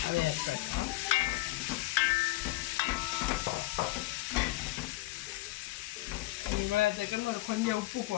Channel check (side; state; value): right; quieter; 18.9 dB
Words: அதை ஆட் பண்ணலாம். இவ்வளோத்துக்கும் கொஞ்சம் உப்பு